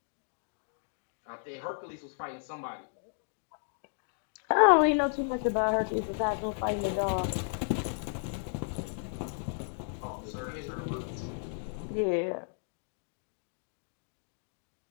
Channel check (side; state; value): right; silent; digital silence